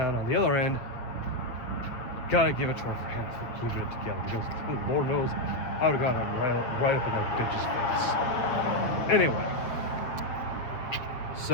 on the other end, gotta give it to her for keeping it together because Lord knows I would have got him right up in that bitch's face. Anyway,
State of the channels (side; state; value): right; late; 8.0 ms